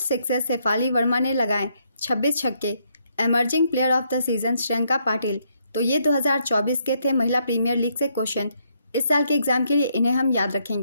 शेफाली वर्मा ने लगाए 26 छक्के। Emerging player of the season Shriyanka Patil. तो ये 2024 के थे महिला प्रीमियर लीग से क्वेश्चन। इस साल के एग्जाम के लिए इन्हें हम याद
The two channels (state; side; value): inverted; both; correlation -0.74